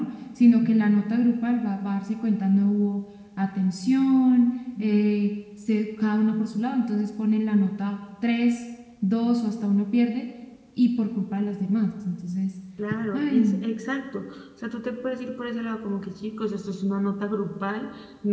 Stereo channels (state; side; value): identical; both; correlation 1.00